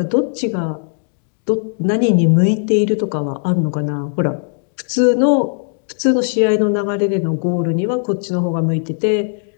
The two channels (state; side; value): silent; right; digital silence